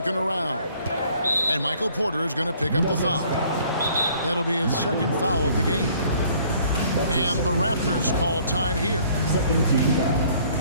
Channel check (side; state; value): both; inverted; correlation -0.58